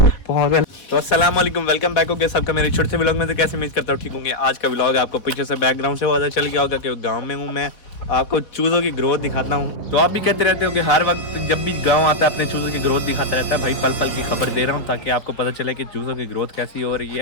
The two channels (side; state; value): right; late; 4.1 ms